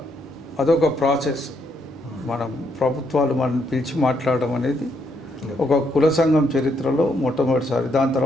అదొక ప్రాసెస్. మనం ప్రభుత్వాలు మనం పిలిచి మాట్లాడడం అనేది ఒక కుల సంఘం చరిత్రలో మొట్టమొదటిసారి. దాని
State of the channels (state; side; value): normal; both; correlation 0.75